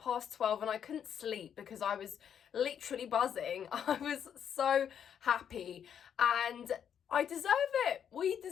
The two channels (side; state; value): right; quieter; 8.5 dB